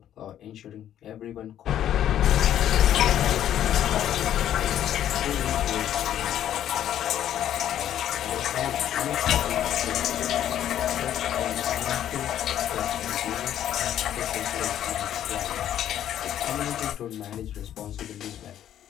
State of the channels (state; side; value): quieter; right; 11.0 dB